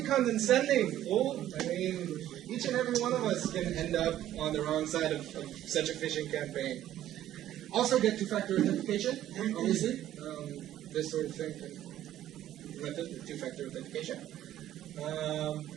condescending, fool. I mean, each and every one of us can end up on the wrong side of such a phishing campaign. Also get two-factor authentication, obviously. This sort of thing can implement with two-factor authentication,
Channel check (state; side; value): quieter; left; 12.5 dB